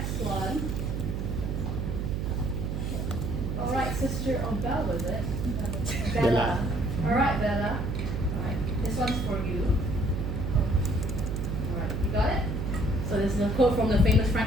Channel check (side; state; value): right; noise; hum, 2 dB below the sound